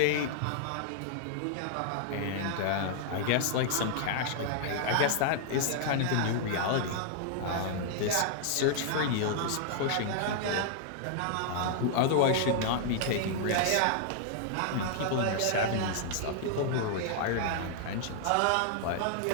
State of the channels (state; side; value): different; both; correlation -0.01